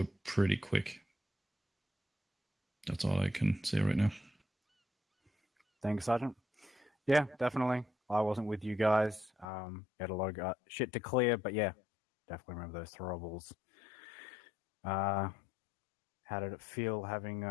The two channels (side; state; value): right; drops out; at 9.5 s